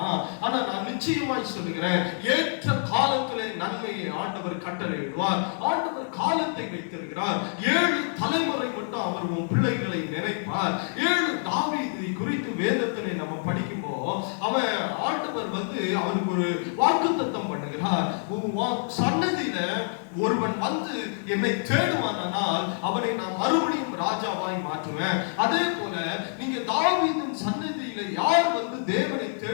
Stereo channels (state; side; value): silent; right; digital silence